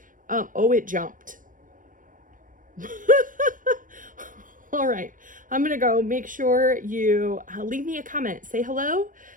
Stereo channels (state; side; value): late; left; 0.38 ms